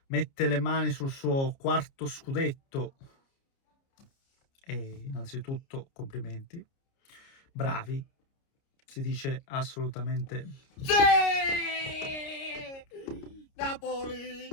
mette le mani sul suo quarto scudetto e innanzitutto complimenti, bravi, si dice assolutamente sì! Napoli,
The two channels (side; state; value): right; late; 30 ms